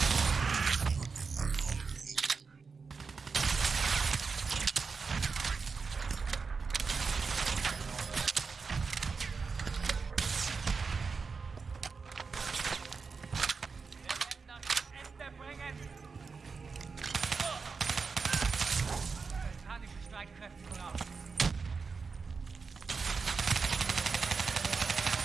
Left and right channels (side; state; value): left; quieter; 4.9 dB